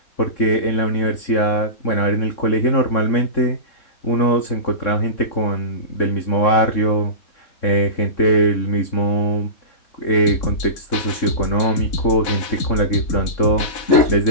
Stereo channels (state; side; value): late; right; 3.6 ms